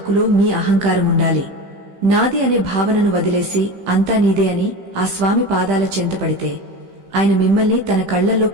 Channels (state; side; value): late; left; 15 ms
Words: మీ అహంకారం ఉండాలి. నాది అనే భావనను వదిలేసి అంతా నీదే అని ఆ స్వామి పాదాల చెంతపడితే ఆయన మిమ్మల్ని తన కళ్లల్లో